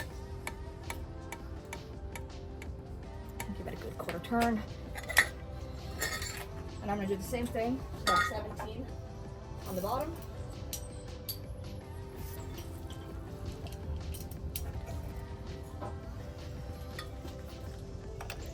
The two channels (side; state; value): both; identical; correlation 1.00